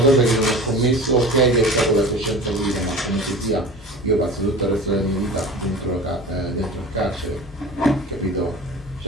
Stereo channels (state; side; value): normal; both; correlation 0.36